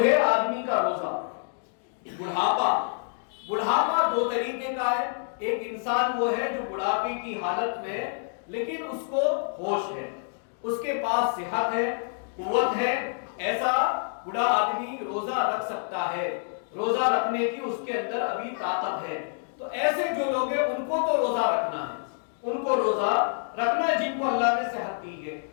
آدمی کا روزہ، بڑھاپا 2 طریقے کا ہے۔ ایک انسان وہ ہے جو بڑھاپے کی حالت میں لیکن اس کو ہوش ہے، اس کے پاس صحت ہے، قوت ہے، ایسا بڑا آدمی روزہ رکھ سکتا ہے، روزہ رکھنے کی اس کے اندر ابھی طاقت ہے۔ تو ایسے جو لوگ ہیں ان کو تو روزہ رکھنا ہے، ان کو روزہ رکھنا ہے جن کو اللہ نے صحت دی ہے۔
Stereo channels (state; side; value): silent; right; digital silence